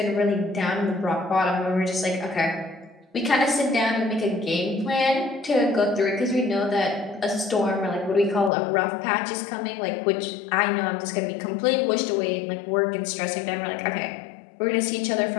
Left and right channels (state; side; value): drops out; right; at 8.5 s